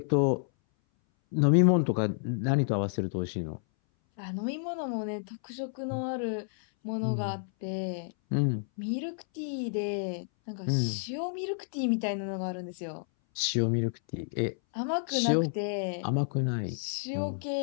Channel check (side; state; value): right; silent; 58 dB below the other